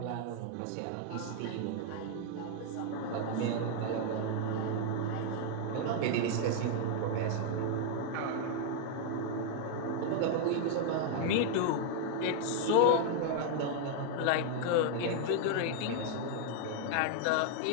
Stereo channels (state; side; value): different; both; correlation 0.00